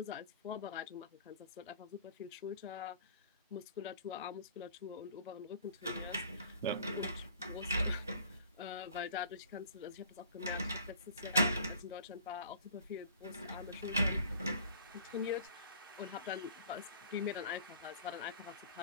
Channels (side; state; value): both; inverted; correlation -0.50